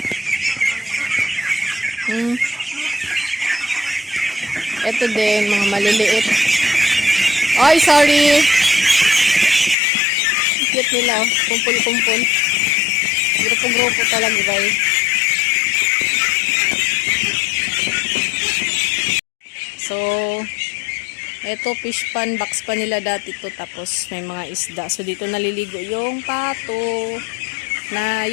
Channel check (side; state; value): right; drops out; at 9.8 s